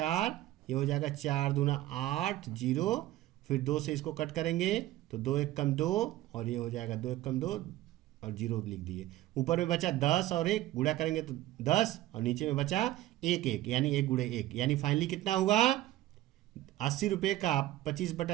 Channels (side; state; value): left; quieter; 15.3 dB